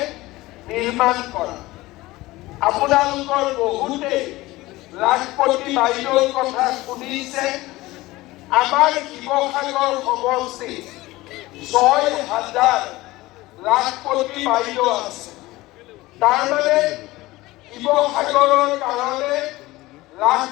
নিৰ্মাণ কৰা। আপোনালোকৰ বহুতে লাখপতি বাইদেউৰ কথা শুনিছে। আমাৰ শিৱসাগৰ সমষ্টি ৬,০০০ লাখপতি বাইদেউ আছে। তাৰমানে শিৱসাগৰৰ কাৰণে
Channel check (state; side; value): quieter; right; 19.1 dB